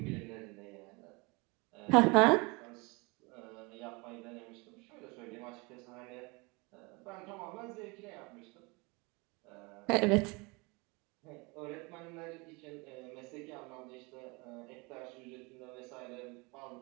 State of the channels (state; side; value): quieter; left; 27.2 dB